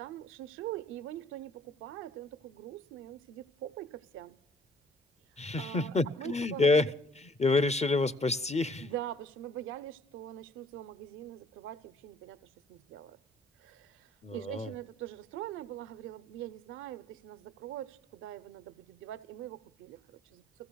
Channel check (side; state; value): both; normal; correlation 0.58